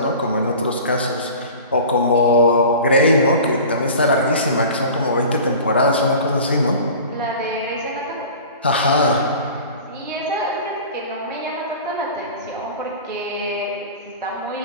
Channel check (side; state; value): both; inverted; correlation -0.39